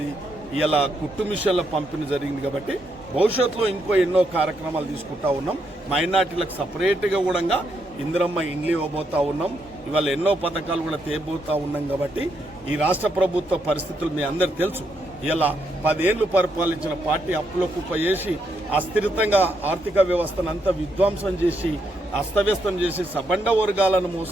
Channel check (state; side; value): normal; both; correlation 0.78